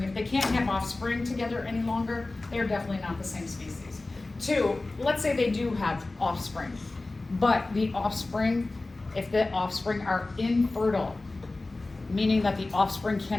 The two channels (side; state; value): right; quieter; 3.1 dB